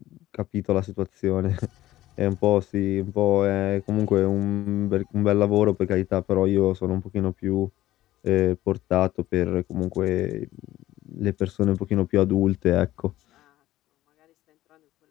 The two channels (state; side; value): quieter; right; 15.2 dB